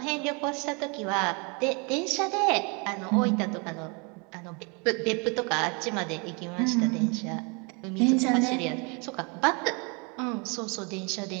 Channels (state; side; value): quieter; left; 32.4 dB